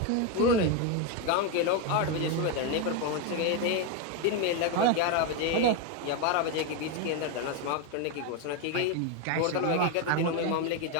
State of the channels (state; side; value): different; both; correlation 0.02